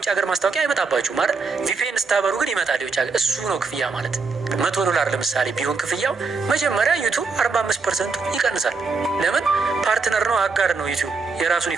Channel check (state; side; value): quieter; left; 4.6 dB